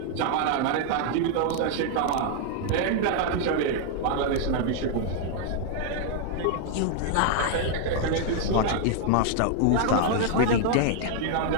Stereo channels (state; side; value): different; both; correlation 0.00